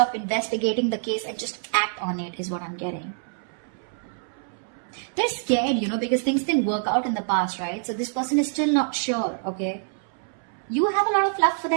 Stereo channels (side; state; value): left; silent; 61 dB below the other